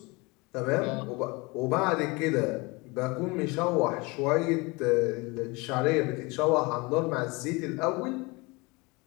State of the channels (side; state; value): right; quieter; 25.8 dB